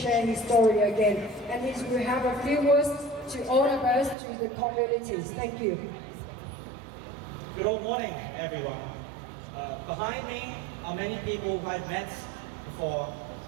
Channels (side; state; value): left; drops out; at 4.2 s